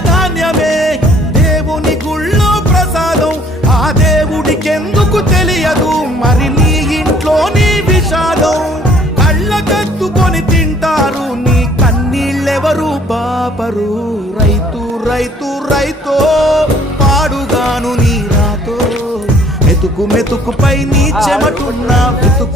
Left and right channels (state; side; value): normal; both; correlation 0.58